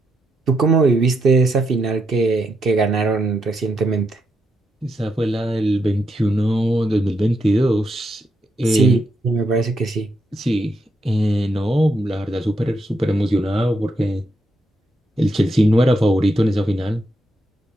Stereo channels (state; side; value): normal; both; correlation 0.81